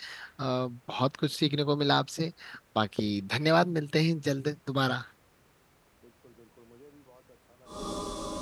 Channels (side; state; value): both; identical; correlation 1.00